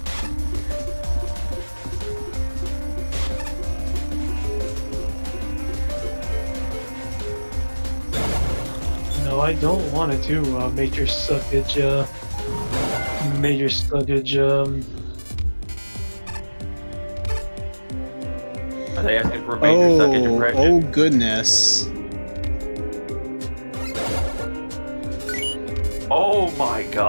No, I don't want to do major suckage. Major suckage. Are they asking for a major suckage impression? Oh goodness. Oh my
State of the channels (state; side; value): inverted; both; correlation -1.00